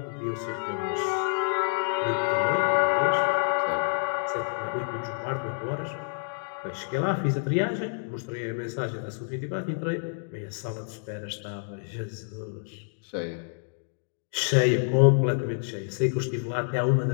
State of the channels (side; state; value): right; silent; digital silence